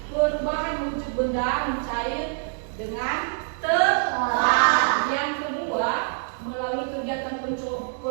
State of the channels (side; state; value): left; silent; 62 dB below the other